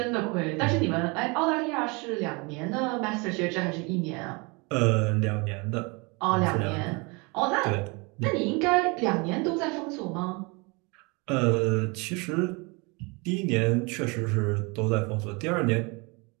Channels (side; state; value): left; quieter; 28.9 dB